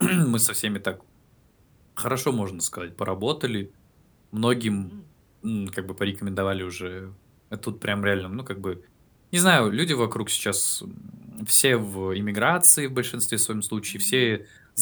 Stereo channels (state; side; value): identical; both; correlation 1.00